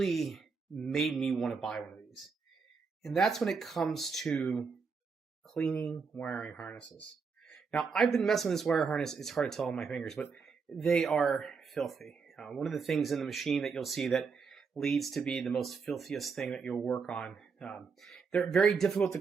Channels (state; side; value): quieter; left; 5.3 dB